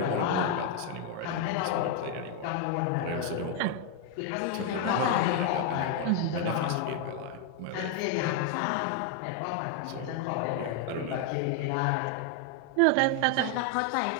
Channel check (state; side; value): different; both; correlation 0.01